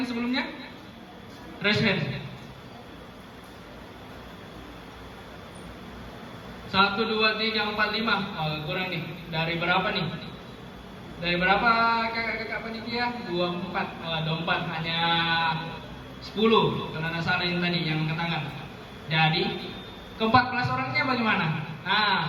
sebelumnya? Raise hand. 1, 2, 3, 4, 5. Oh, kurang nih. Dari berapa nih? Dari berapa kakak-kakak panitia? 24. Oh, 24. Hanya 10. Karena salah yang tadi yang angkat tangan. Jadi, ke-14 orangnya bagaimana? Nah,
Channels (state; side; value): identical; both; correlation 1.00